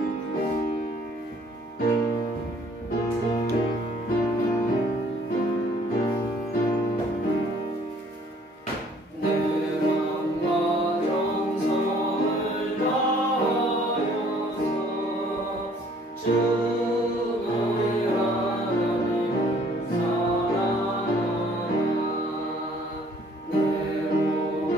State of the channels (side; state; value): both; normal; correlation 0.59